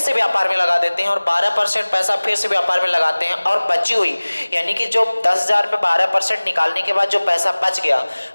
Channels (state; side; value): inverted; both; correlation -1.00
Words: व्यापार में लगा देते हैं, और 12% पैसा फिर से व्यापार में लगाते हैं। और बची हुई, यानी कि जो 10,000 में 12% निकालने के बाद जो पैसा बच गया,